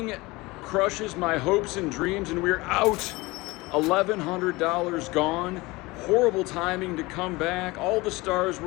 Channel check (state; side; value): quieter; right; 22.2 dB